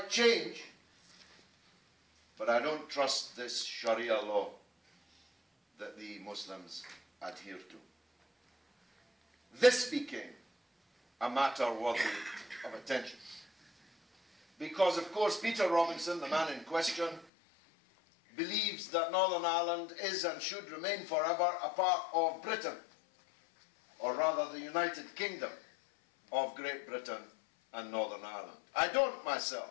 change. But I don't trust this Sharia law that the Muslims adhere to. this became a matter worthy of attention. Because, of course, Peter Robinson, the man in question, believes that Northern Ireland is and should remain forever a part of Britain, or rather the United Kingdom of Great Britain and Northern Ireland. I don't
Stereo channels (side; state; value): right; drops out; at 17.2 s